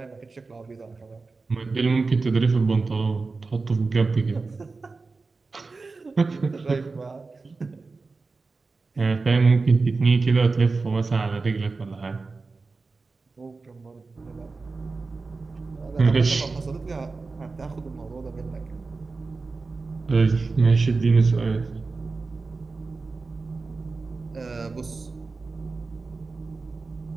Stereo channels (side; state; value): left; quieter; 4.0 dB